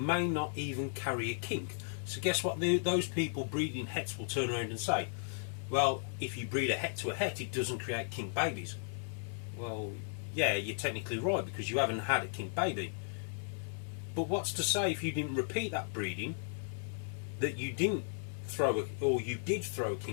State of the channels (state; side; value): silent; right; 54 dB below the other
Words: not even carry a kink. So guess what those people breeding hets will turn around and say? Well, if you breed a het to a het, it doesn't create kink babies. Well, yeah, you're technically right, because you haven't had a kink baby. But what's to say if you didn't repeat that breeding, that you didn't throw or you did throw a